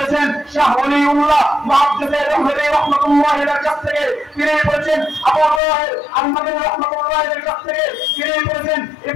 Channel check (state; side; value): drops out; right; at 5.6 s